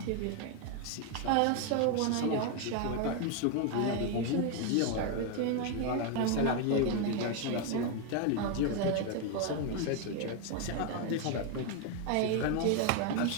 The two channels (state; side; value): different; both; correlation 0.01